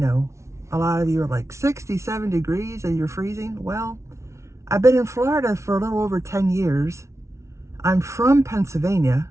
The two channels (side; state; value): left; late; 0.13 ms